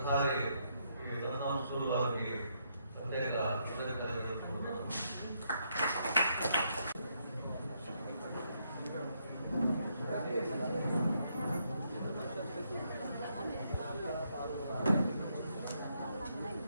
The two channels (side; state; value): both; inverted; correlation -0.76